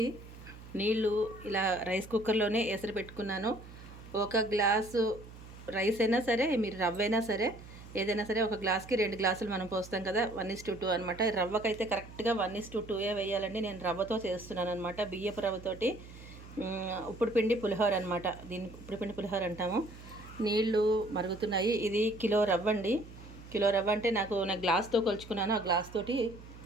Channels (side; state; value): right; noise; hum, 17 dB below the sound